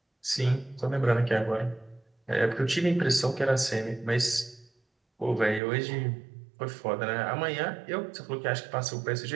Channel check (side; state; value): left; drops out; at 5.6 s